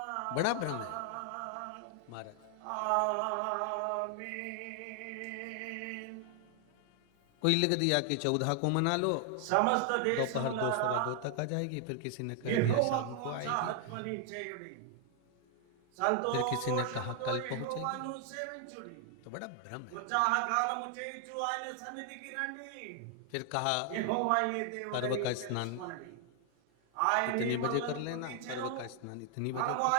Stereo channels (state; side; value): different; both; correlation 0.00